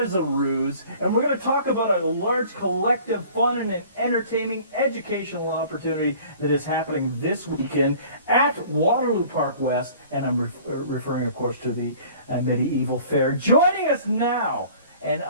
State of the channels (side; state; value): both; inverted; correlation -0.49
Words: is a ruse. And we're going to talk about a large collective fun and an entertaining educational opportunity that is happening this weekend at Waterloo Park West. And I'm referring, of course, to the Medieval Fair. Joining us now, and